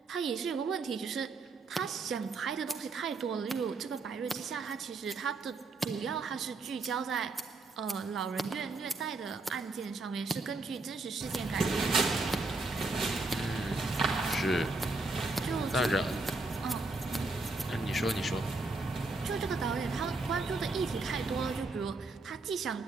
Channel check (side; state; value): left; quieter; 3.5 dB